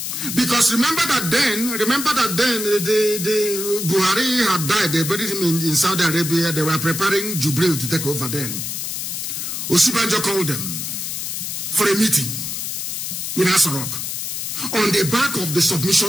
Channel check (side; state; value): left; noise; hiss, 4 dB below the sound